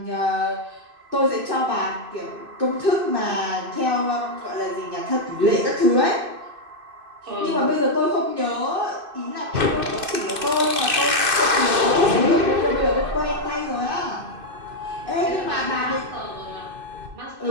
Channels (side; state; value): left; late; 2.6 ms